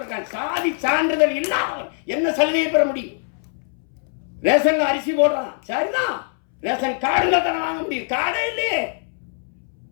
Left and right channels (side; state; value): right; silent; 64 dB below the other